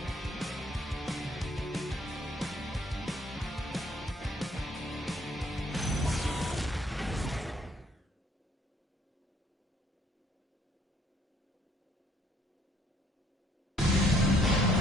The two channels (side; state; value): both; normal; correlation 0.64